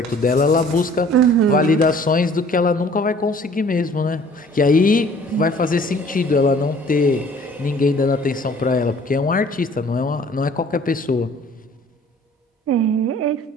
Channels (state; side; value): normal; both; correlation 0.53